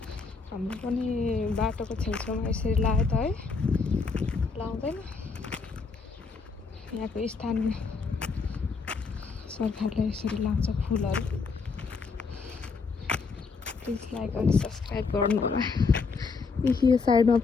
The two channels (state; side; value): quieter; right; 4.7 dB